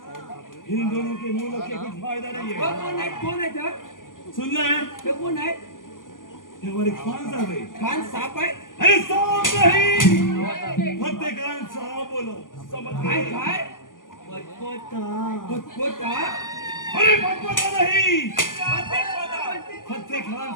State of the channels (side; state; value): right; late; 0.89 ms